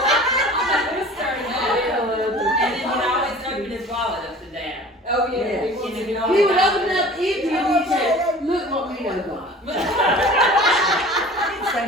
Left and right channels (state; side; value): normal; both; correlation 0.43